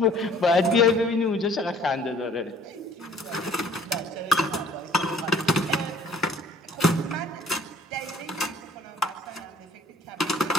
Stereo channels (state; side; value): normal; both; correlation 0.55